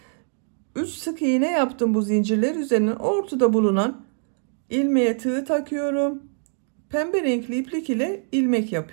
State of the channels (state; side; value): silent; left; 57 dB below the other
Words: 3 sık iğne yaptım bu zincirler üzerine. Ortada bulunan ilmeğe tığ takıyorum. Pembe renkli iplik ile ilmek